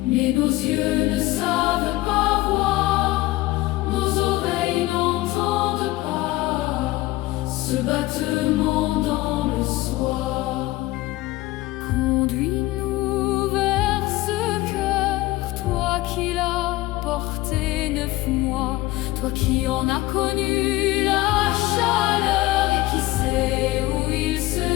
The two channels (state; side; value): quieter; right; 18.6 dB